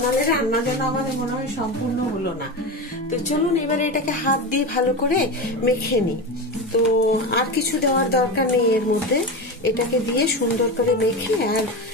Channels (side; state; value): both; normal; correlation 0.22